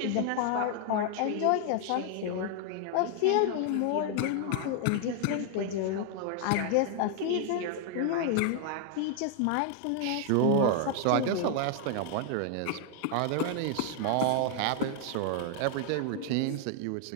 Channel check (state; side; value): different; both; correlation 0.00